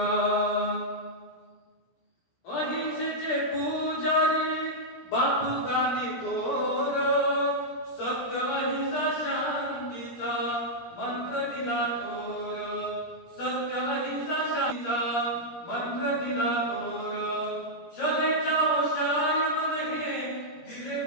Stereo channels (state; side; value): late; right; 17 ms